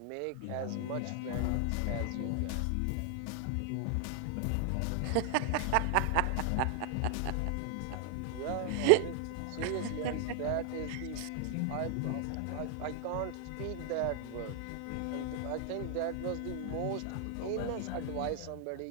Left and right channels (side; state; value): both; different; correlation 0.00